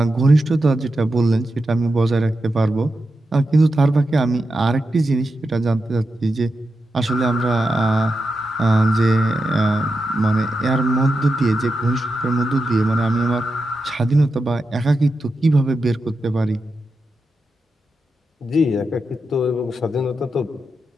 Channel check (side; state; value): both; normal; correlation 0.88